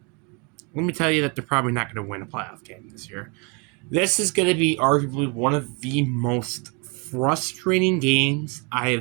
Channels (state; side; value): quieter; left; 32.5 dB